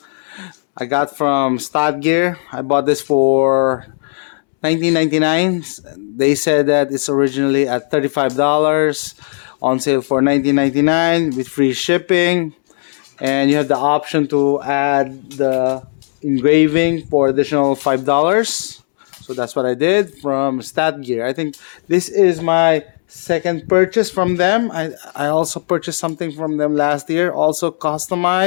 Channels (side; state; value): right; silent; 69 dB below the other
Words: I got from Stadgear. I bought this for $19.99. They said that it's originally at $35, on sale for $19.99 with free shipping, and you have the option to add the engraving for additional $5. So that's what I did from Stadgear. I think this is my second purchase from them. I also purchased something from them last year, also